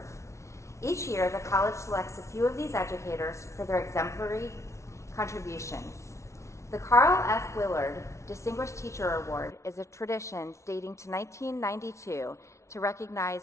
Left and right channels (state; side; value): late; right; 0.14 ms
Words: Each year, the college selects a few of these educators for their exemplary contributions. The Carl F. Willard Distinguished Teacher Award is a tradition dating to 1992 to recognize